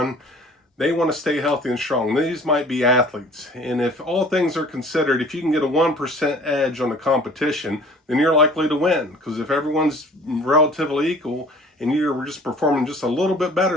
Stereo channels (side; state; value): both; normal; correlation 0.49